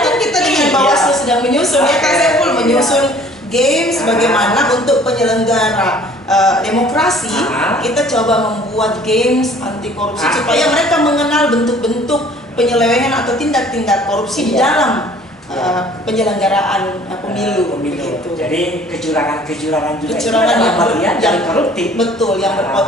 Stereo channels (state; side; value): normal; both; correlation 0.53